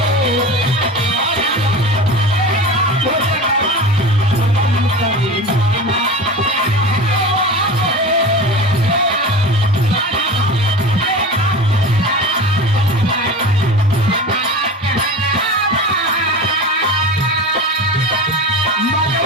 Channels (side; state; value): both; normal; correlation 0.31